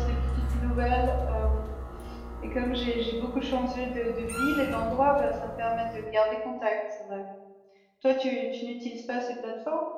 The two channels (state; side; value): identical; both; correlation 1.00